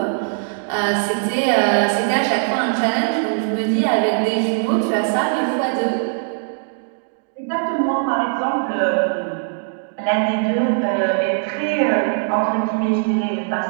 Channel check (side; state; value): left; silent; digital silence